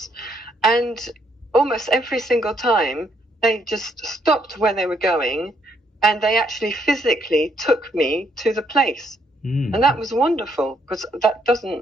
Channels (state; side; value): normal; both; correlation 0.72